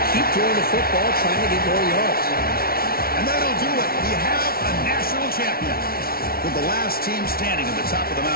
keep throwing the football, trying to get more yards. And that'll do it. We have a national champion. With the last team standing at the top of the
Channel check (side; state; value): right; late; 0.44 ms